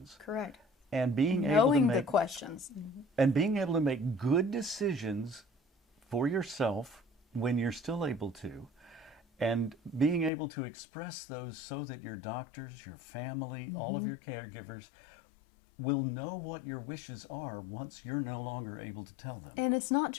Correct. And being able to Knowing make the questions. and being able to make good decisions for yourself when you're still able to, and being able to express those so that your doctors, your family, all of your caregivers will know what your wishes are once you're no longer able to tell them. And it's not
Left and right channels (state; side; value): drops out; right; at 10.3 s